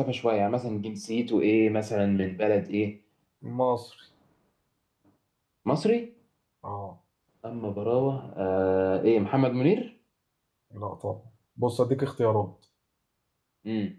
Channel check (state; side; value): identical; both; correlation 1.00